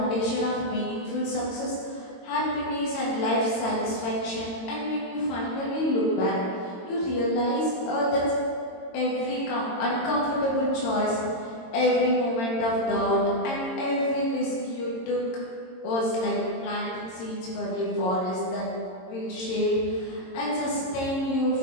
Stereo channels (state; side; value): late; right; 22 ms